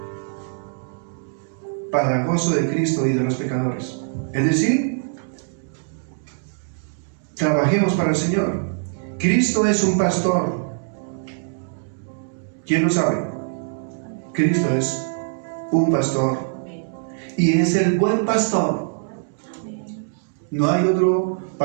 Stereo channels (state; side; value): silent; left; digital silence